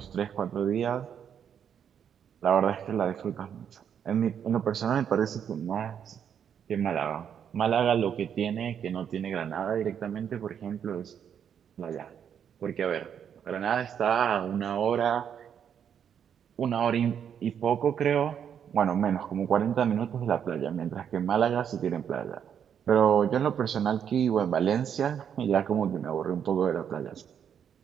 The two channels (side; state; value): left; quieter; 8.3 dB